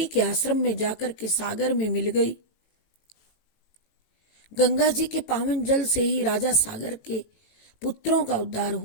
के आश्रम में जाकर के सागर में मिल गई। गंगा जी के पावन जल से ही राजा सागर के पुत्रों का उद्धार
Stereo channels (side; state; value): right; late; 18 ms